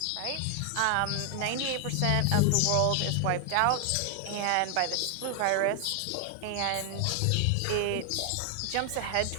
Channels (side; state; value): both; different; correlation 0.00